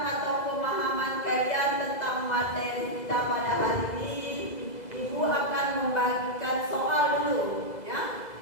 atau pemahaman kalian tentang materi kita pada hari ini, Ibu akan membagikan soal dulu, ya,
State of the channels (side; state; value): right; late; 2.0 ms